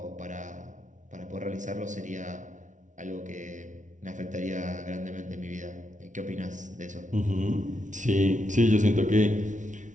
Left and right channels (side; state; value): left; late; 0.37 ms